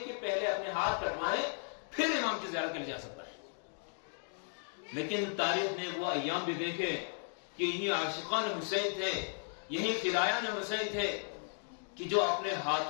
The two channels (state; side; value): silent; right; 54 dB below the other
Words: کہ پہلے اپنے ہاتھ کٹوائیں، پھر امام کی زیارت کے لیے جا سکتا ہے۔ لیکن تاریخ نے وہ ایام بھی دیکھے کہ یہی عاشقان حسین تھے، یہی فدایان حسین تھے کہ جو اپنے